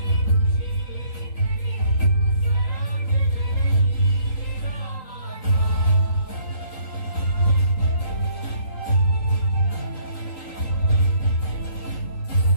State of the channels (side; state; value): right; late; 3.8 ms